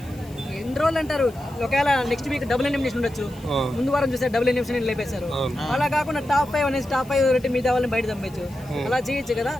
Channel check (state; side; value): noise; left; hiss, 24 dB below the sound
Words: ఎన్ని రోజులు అంటారు, ఒకవేళ నెక్స్ట్ వీక్ డబుల్ ఎలిమినేషన్ ఉండొచ్చు. ముందు వారం చూస్తే డబుల్ ఎలిమినేషన్ లేపేశారు. అలా కాకుండా టాప్ 5 అనేసి టాప్ 5 రెట్టి మీద వాళ్ళని బయట పంపించు, అలా చేయొచ్చు కదా.